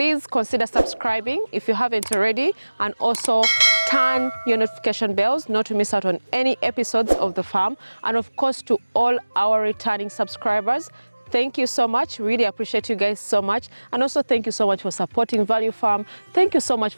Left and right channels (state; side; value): inverted; both; correlation -1.00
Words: consider subscribing if you haven't already, and also turn your notification bells not to miss out on any episodes of The Farm. And of course, to all our returning subscribers, thank you so much. Really appreciate you guys so much. And also thank you so much for supporting Value Farm. Thank you so much